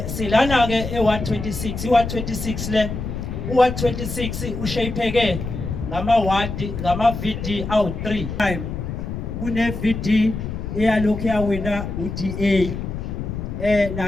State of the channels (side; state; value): left; noise; rumble, 6 dB below the sound